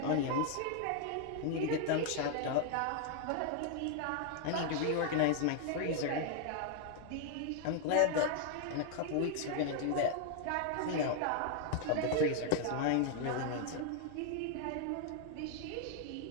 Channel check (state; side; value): different; both; correlation 0.00